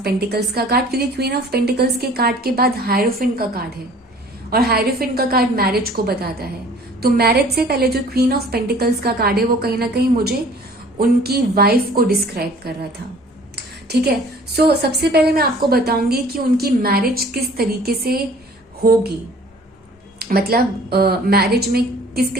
पेंटिकल्स का कार्ड, क्योंकि क्वीन ऑफ पेंटिकल्स के कार्ड के बाद हायरोफेंट का कार्ड है और हायरोफेंट का कार्ड मैरिज को बताता है। तो मैरिज से पहले जो क्वीन ऑफ पेंटिकल्स का कार्ड है वो कहीं ना कहीं मुझे उनकी वाइफ को डिस्क्राइब कर रहा था। ठीक है, सो सबसे पहले मैं आपको बताऊंगी कि उनकी मैरिज किस तरीके से होगी, मतलब मैरिज में किस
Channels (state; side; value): normal; both; correlation 0.51